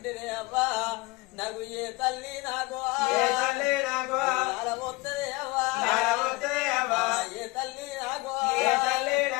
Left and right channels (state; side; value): quieter; right; 23.1 dB